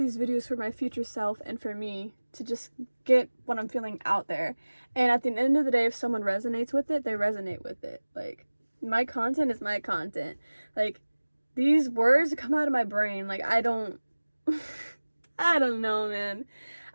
videos for my future self and for me to just get what I'm feeling out there. And at the end of the day, if someone resonates with it, they resonate with it. Like, my content is my content. Like, these words come out of my brain. Like, I don't know, man.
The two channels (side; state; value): both; inverted; correlation -1.00